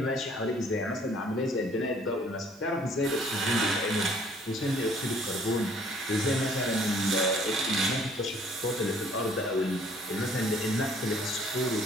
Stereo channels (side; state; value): both; normal; correlation 0.58